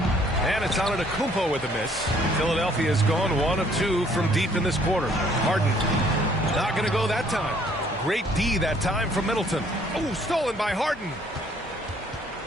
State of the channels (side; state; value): both; normal; correlation 0.62